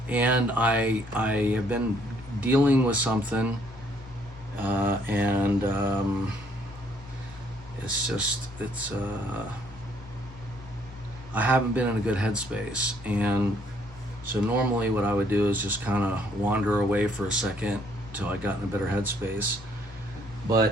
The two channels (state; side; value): normal; both; correlation 0.66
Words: And I have been dealing with something, and I haven't been in a good headspace, and so normally what I would do is just kind of wander away for a second till I got in a better headspace,